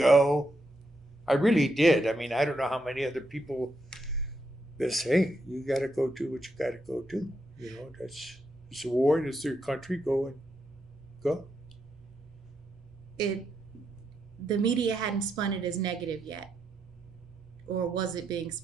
I really did. I mean, I don't know how many other people that say, you got to go do what you got to go do. It's a war, it's their country, go. The media hadn't spun it as negative yet. Or was it being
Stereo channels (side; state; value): both; normal; correlation 0.81